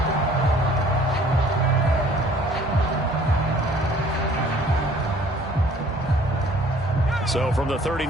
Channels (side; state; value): both; normal; correlation 0.55